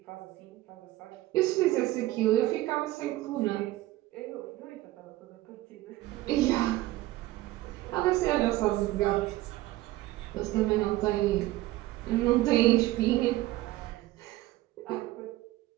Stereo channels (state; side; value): quieter; left; 17.0 dB